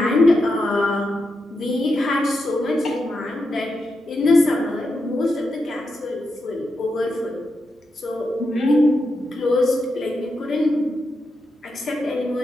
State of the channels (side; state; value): both; normal; correlation 0.86